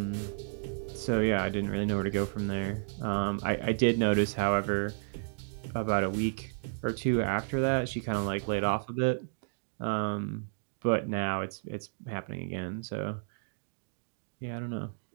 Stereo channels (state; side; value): silent; left; digital silence